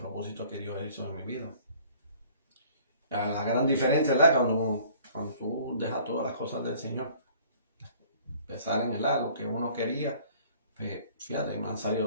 que Dios hizo en mi vida. La gran diferencia, ¿verdad? Cuando tú dejas todas las cosas del Señor, pensar en lo que uno quería, pues fíjate, me han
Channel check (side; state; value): both; inverted; correlation -0.54